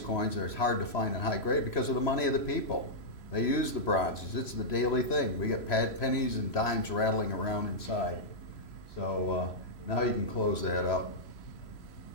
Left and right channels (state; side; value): late; right; 3.0 ms